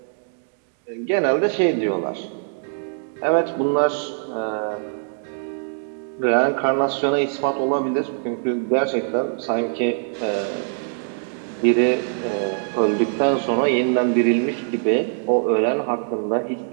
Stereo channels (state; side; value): silent; left; digital silence